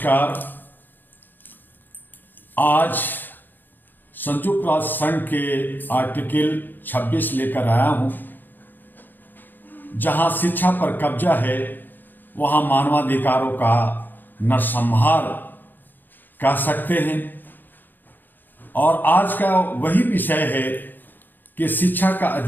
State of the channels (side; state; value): right; late; 0.090 ms